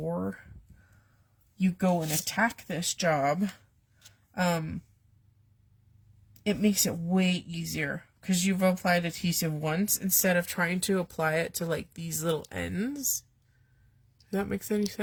you go and attack this job, it makes it way easier because you've applied adhesive once instead of trying to apply it to like these little ends. Does that make any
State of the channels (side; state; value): both; identical; correlation 1.00